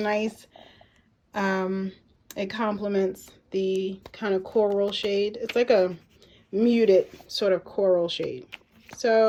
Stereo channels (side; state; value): both; identical; correlation 1.00